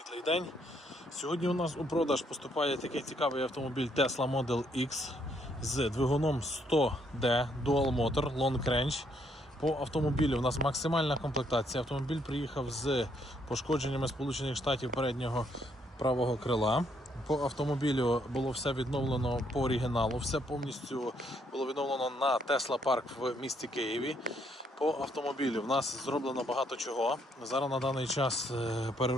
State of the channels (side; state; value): both; normal; correlation 0.71